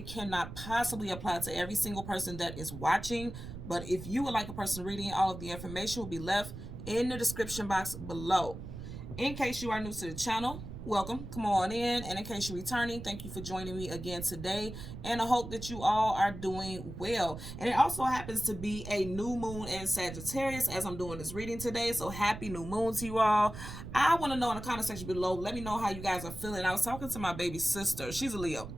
cannot possibly apply to every single person that is watching. But if you would like a personal reading, all of the information will be left in the description box below. In case you are new to the channel, welcome, come on in. And in case you're returning, thank you for joining me again today. And I hope that you all are doing well. And it also happens to be a new moon in Sagittarius as I'm doing this reading today. So happy new moon to you all. I want to know in the comment section below, let me know how you guys are feeling. I was talking to my baby sister. She's a Leo.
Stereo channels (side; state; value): right; noise; rumble, 10 dB below the sound